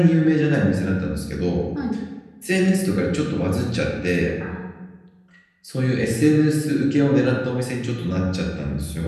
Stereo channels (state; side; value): identical; both; correlation 1.00